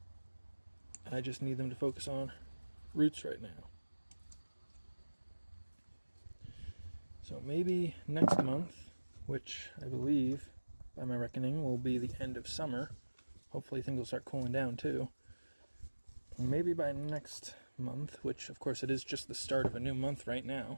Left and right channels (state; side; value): inverted; both; correlation -1.00